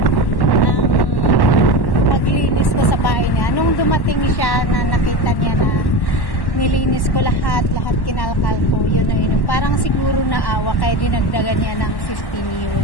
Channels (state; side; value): late; right; 1.1 ms